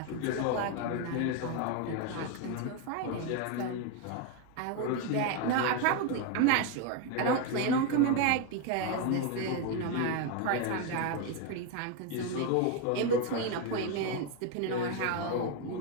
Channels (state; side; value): different; both; correlation 0.02